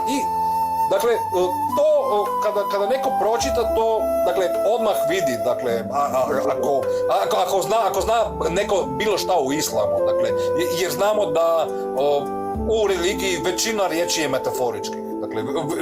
I dakle, to kada neko pročita to, dakle, odmah vidi, dakle, ako zna neko bilo šta u islamu, dakle, jer znamo da u religiji većina riječi je metaforički. Dakle,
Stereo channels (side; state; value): both; identical; correlation 1.00